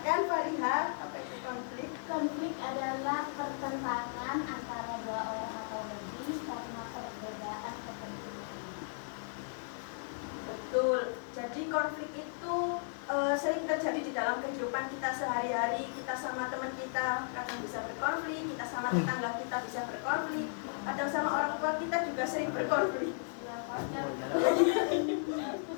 Fariha, apa itu konflik? Konflik adalah pertentangan antara dua orang atau lebih karena perbedaan kepentingan. Betul. Jadi konflik itu sering terjadi di dalam kehidupan kita sehari-hari. Kita sama teman kita kadang bisa berkonflik, kita sama tetangga kita bisa berkonflik, kadang sama orang tua kita juga sering berkonflik. Ya, partner.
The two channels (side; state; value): right; silent; digital silence